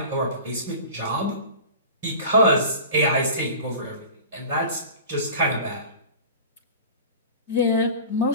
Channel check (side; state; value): both; inverted; correlation -0.38